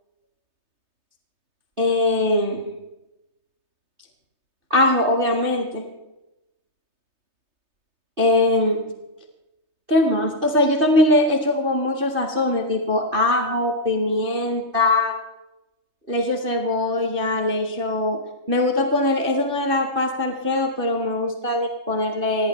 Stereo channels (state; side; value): late; left; 3.2 ms